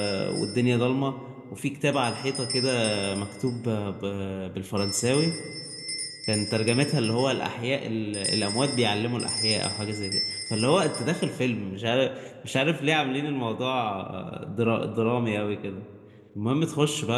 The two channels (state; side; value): identical; both; correlation 1.00